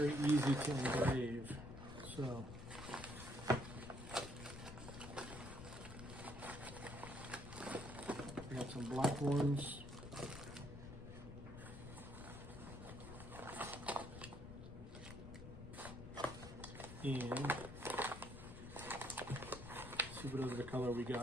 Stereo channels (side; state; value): left; noise; rumble, 11 dB below the sound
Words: easy to engrave. So I got some black ones. And see what other color we